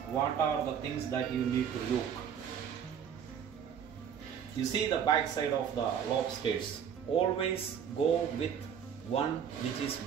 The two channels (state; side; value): quieter; left; 8.1 dB